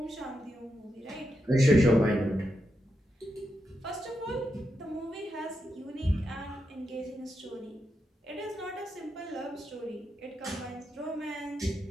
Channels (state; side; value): normal; both; correlation 0.85